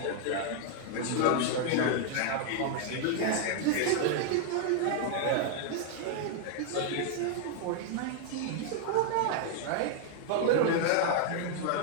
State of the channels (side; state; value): both; different; correlation 0.00